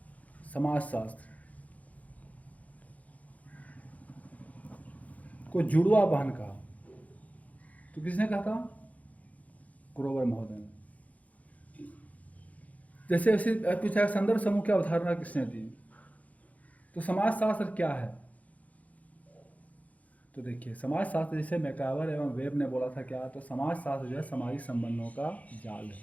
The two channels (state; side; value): late; right; 0.071 ms